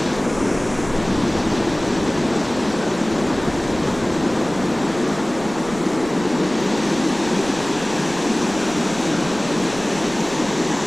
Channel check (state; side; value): noise; right; rumble, 16 dB below the sound